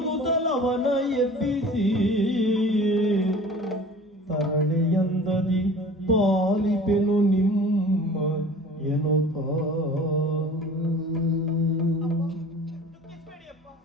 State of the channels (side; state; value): both; normal; correlation 0.43